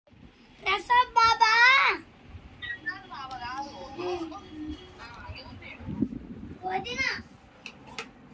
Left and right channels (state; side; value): identical; both; correlation 1.00